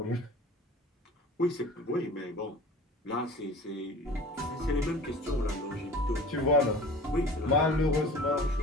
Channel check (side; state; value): both; normal; correlation 0.42